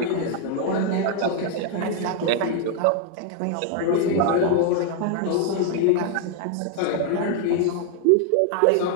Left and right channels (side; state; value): both; different; correlation 0.00